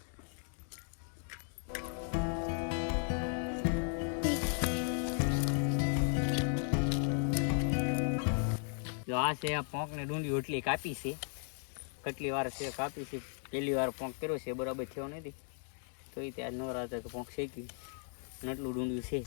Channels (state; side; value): silent; right; 54 dB below the other